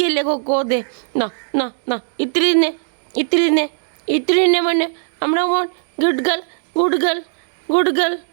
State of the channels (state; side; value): silent; left; digital silence